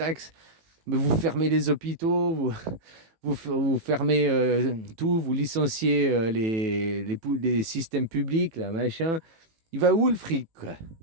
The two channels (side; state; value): left; late; 18 ms